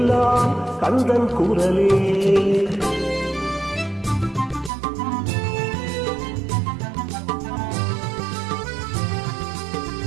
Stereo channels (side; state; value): left; drops out; at 4.7 s